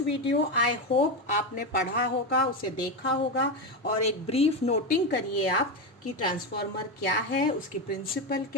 video I hope आपने पढ़ा होगा, उसे देखा होगा और एक ब्रीफ नोटिंग करिए आप कि ट्रांसफार्मर क्या है, उसकी प्रिंसिपल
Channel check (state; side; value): normal; both; correlation 0.13